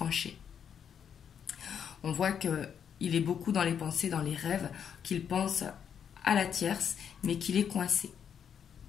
On voit que il est beaucoup dans les pensées, dans les rêves, qu'il pense à la tierce, mais qu'il est coincé.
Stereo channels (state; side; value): quieter; right; 8.0 dB